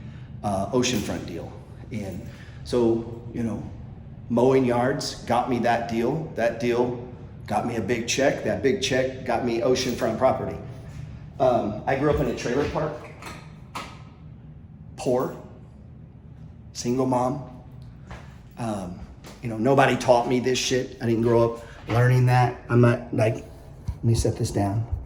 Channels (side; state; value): both; identical; correlation 1.00